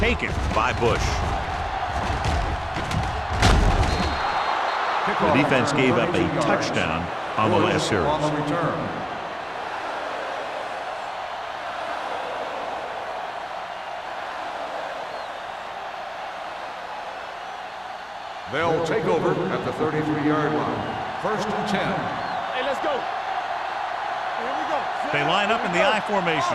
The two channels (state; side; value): identical; both; correlation 1.00